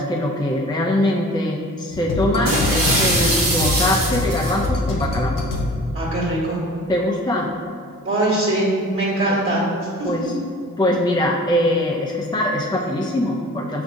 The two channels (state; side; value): normal; both; correlation 0.44